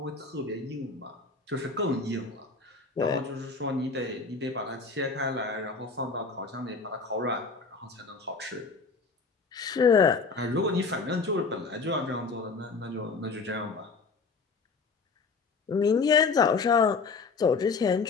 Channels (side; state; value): right; quieter; 4.5 dB